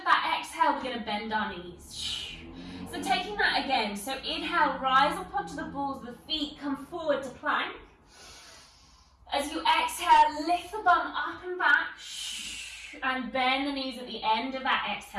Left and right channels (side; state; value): both; identical; correlation 1.00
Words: that exhale, we're going to bend our knees. So taking that again. So inhale, rise up onto the balls of the feet, come forward to plank. As you exhale, lift the bum up and back. And bend the knees at the end of that